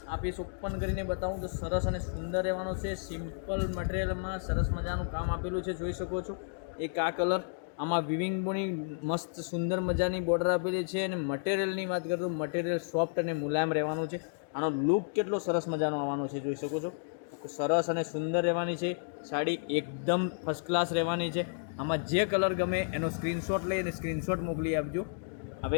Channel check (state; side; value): silent; right; digital silence